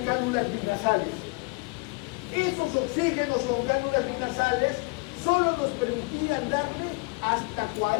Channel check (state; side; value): quieter; right; 28.8 dB